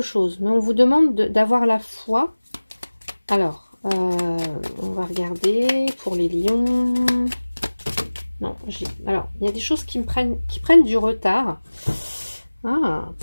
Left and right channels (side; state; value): both; inverted; correlation -1.00